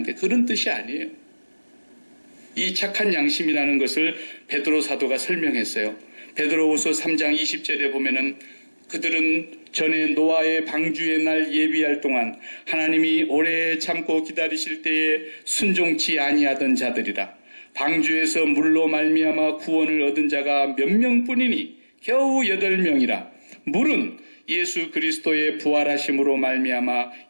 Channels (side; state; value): both; inverted; correlation -1.00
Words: 그런 뜻이 아니에요. 이 착한 양심이라는 것을 베드로 사도가 설명했어요. 베드로후서 3장 20절에 보면은 그들은 전에 노아의 방주의 날 예비할 동안 하나님이 오래 참고 기다리실 때에 순종치 아니하던 자들이라. 방주에서 물로 말미암아 구원을 얻은 자가 몇 명뿐이니 겨우 8명이라. 물은 예수 그리스도의 부활하심으로 말미암아